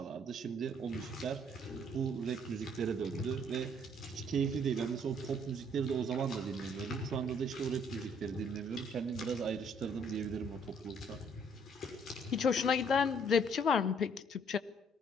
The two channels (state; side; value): normal; both; correlation 0.63